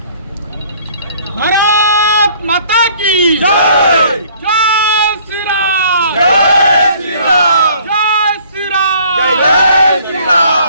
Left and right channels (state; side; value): inverted; both; correlation -0.57